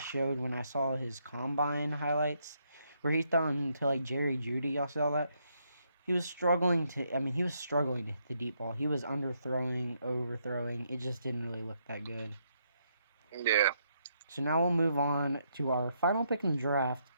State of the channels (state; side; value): inverted; both; correlation -0.76